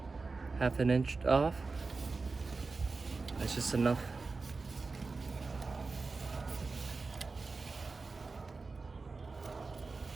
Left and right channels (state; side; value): quieter; left; 4.0 dB